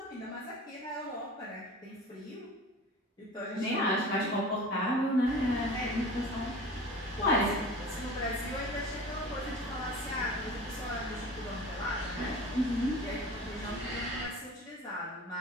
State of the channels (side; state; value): both; normal; correlation 0.38